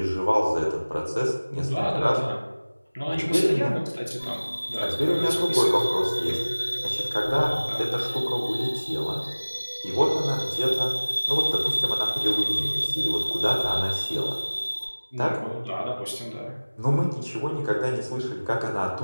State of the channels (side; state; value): both; inverted; correlation -1.00